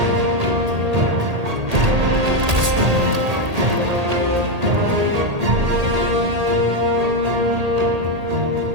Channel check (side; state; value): left; late; 1.8 ms